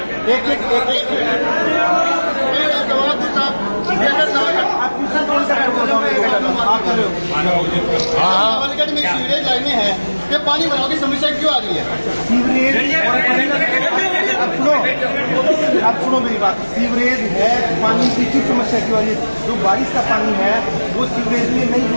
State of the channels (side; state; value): both; inverted; correlation -1.00